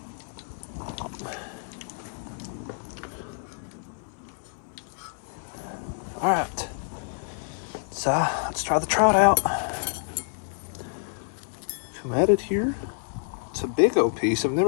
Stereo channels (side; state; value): right; silent; digital silence